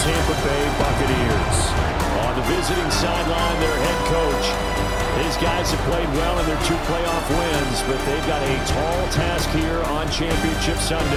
Tampa Bay Buccaneers. On the visiting sideline, their head coach. These guys have played well in their 2 playoff wins, but they've got a tall task here on Championship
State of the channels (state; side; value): identical; both; correlation 1.00